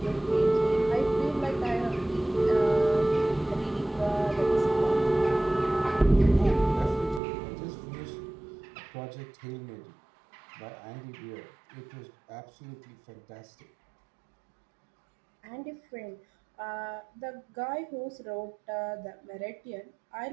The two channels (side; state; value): left; drops out; at 7.2 s